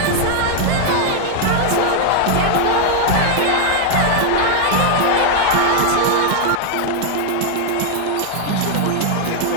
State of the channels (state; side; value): different; both; correlation 0.00